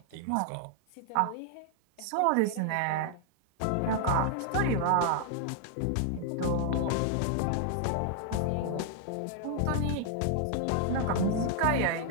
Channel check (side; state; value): both; different; correlation 0.00